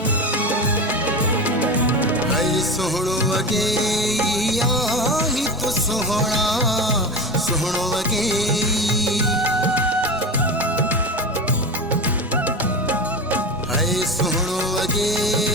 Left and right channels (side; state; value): both; normal; correlation 0.25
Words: सोहणो वगे आही तो सोहणा, सोहणो वगे हाय सोहणो वगे